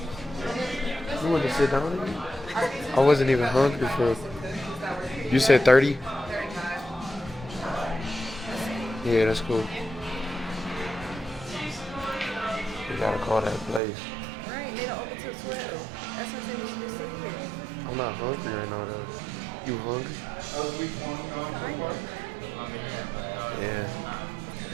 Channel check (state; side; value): drops out; left; at 13.8 s